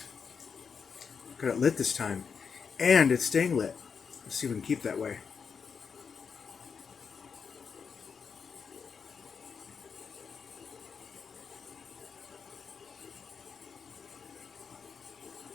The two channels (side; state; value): right; quieter; 6.1 dB